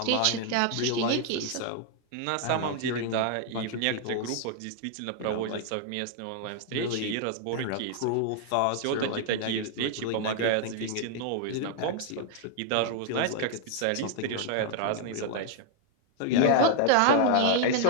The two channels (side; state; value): both; different; correlation 0.00